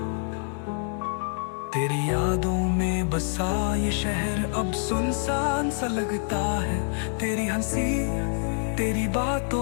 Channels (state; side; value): silent; right; digital silence